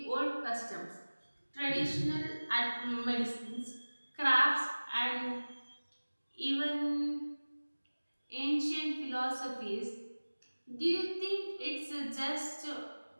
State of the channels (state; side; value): inverted; both; correlation -1.00